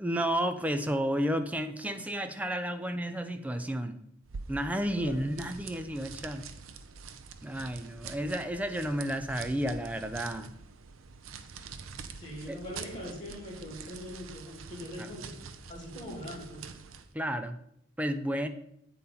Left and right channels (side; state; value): both; normal; correlation 0.76